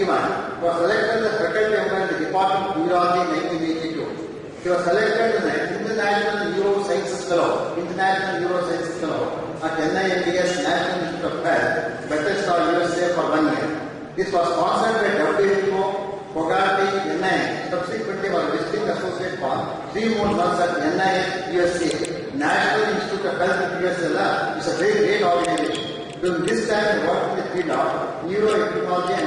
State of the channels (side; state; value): both; identical; correlation 1.00